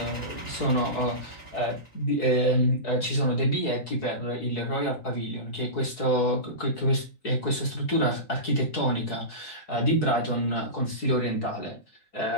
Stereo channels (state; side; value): late; right; 4.7 ms